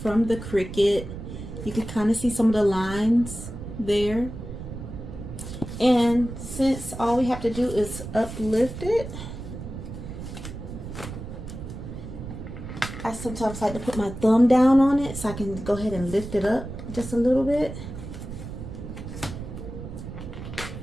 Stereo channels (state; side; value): noise; right; rumble, 9 dB below the sound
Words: from the Cricut. You can kind of see some of the lines there. And since all we have to do is uplift it, I sometimes like to put my thumb down on it so I can go ahead and lift it up just a little bit.